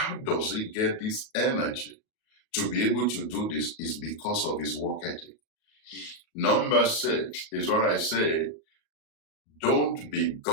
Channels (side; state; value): right; late; 37 ms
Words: does he get this energy to be able to do this? Is because of his work ethic. Number 6 is what I say, don't be